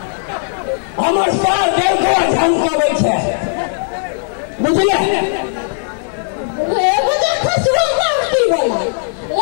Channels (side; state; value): right; silent; digital silence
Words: हमर साल देखो झमकावे छे बुझले एगो तो खसवा मारती वाला